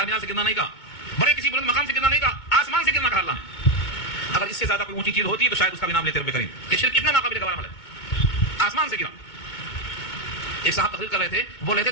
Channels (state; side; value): late; right; 2.2 ms